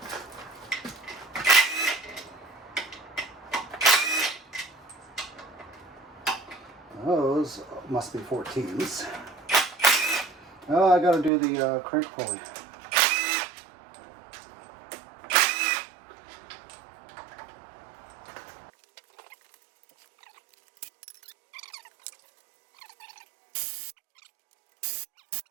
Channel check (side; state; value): left; drops out; at 11.3 s